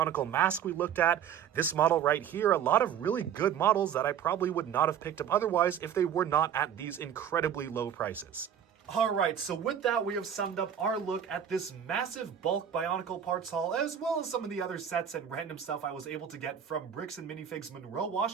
mask we looked at, this model right here, a lot of really good models that I probably would not have picked up otherwise if they were not at these incredibly low prices. Alright, so with that, we have summed up our look at this massive bulk Bionicle parts haul, as well as some of the other sets and random stuff I was able to get from Bricks and Minifigs Monroe,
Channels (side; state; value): left; quieter; 8.8 dB